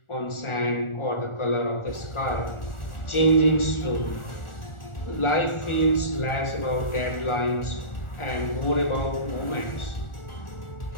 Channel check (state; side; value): late; right; 1.4 ms